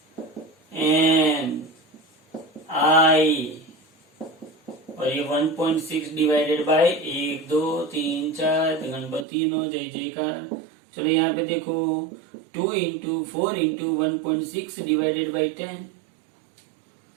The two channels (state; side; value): drops out; left; at 9.2 s